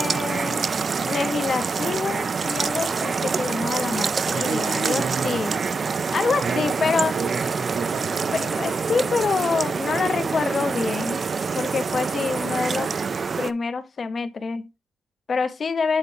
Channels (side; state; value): both; normal; correlation 0.85